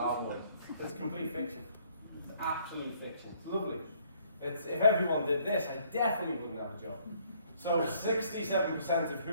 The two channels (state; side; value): inverted; both; correlation -0.64